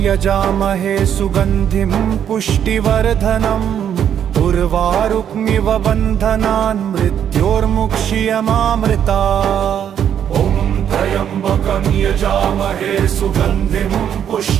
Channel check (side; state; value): left; quieter; 9.2 dB